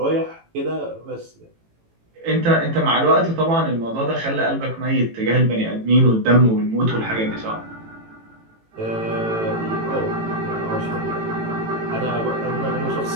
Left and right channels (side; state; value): left; late; 18 ms